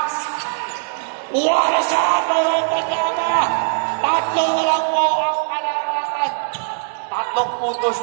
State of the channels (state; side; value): silent; left; digital silence